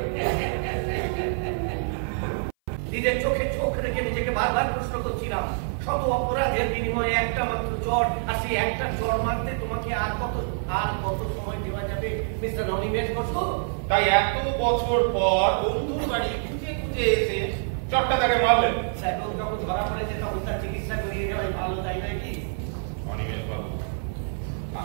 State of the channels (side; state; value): left; silent; 58 dB below the other